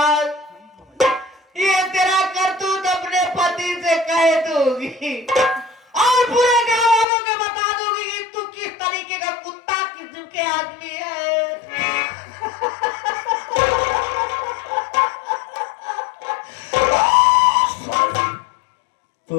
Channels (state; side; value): drops out; right; at 7.1 s